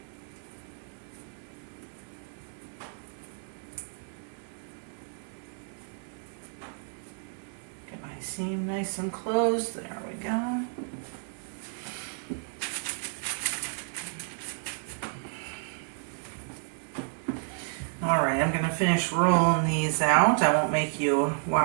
Seam nice and closed. There we go. All right, I'm going to finish rolling these out. I won't make you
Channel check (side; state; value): left; silent; 56 dB below the other